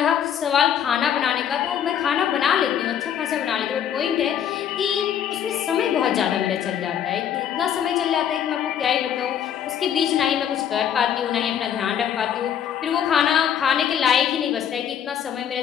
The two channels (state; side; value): quieter; right; 9.2 dB